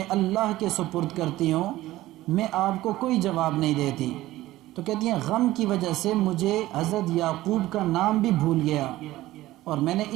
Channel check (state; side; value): quieter; left; 16.4 dB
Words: اللہ کے سپرد کرتی ہوں، میں آپ کو کوئی جواب نہیں دیتی. تو کہتی ہیں غم کی وجہ سے مجھے حضرت یعقوب کا نام بھی بھول گیا اور میں نے